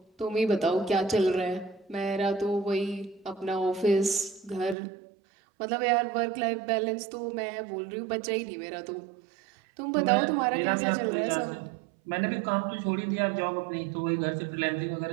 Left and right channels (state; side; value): drops out; left; at 4.8 s